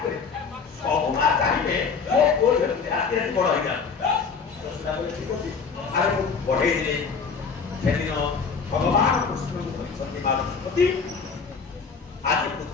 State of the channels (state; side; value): quieter; right; 5.4 dB